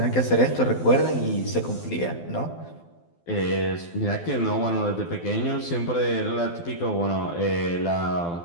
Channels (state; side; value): late; right; 12 ms